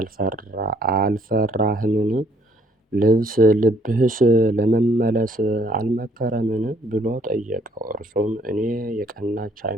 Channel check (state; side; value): normal; both; correlation 0.64